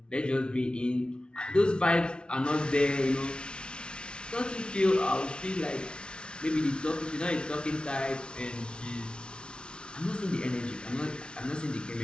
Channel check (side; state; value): right; late; 0.056 ms